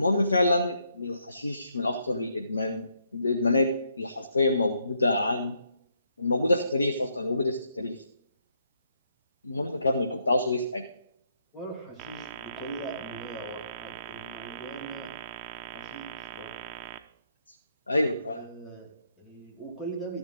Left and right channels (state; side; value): inverted; both; correlation -0.74